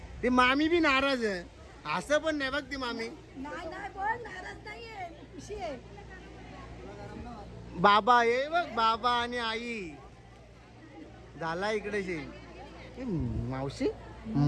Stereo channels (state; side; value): identical; both; correlation 1.00